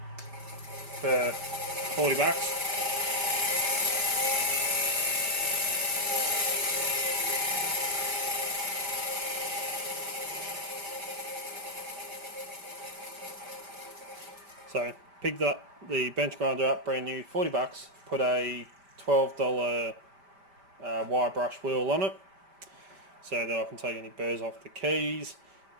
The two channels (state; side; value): late; left; 5.1 ms